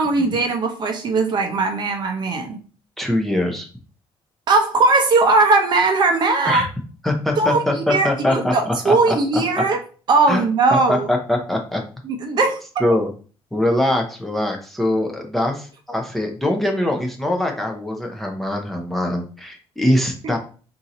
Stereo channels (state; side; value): normal; both; correlation 0.48